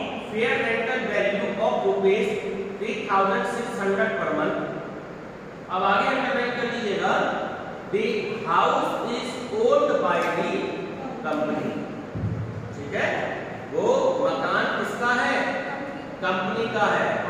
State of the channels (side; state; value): both; identical; correlation 1.00